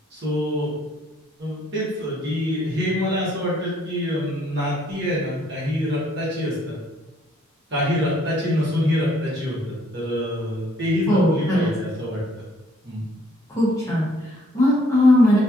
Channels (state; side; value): normal; both; correlation 0.65